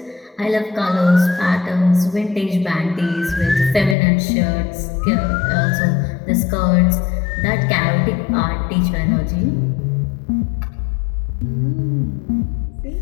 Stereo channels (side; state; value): right; drops out; at 4.0 s